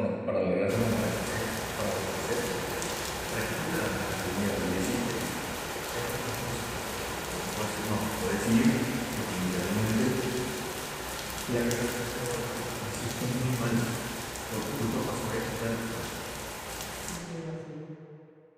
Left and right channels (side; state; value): both; identical; correlation 1.00